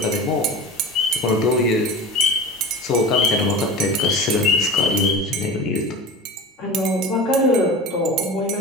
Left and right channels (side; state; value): both; normal; correlation 0.31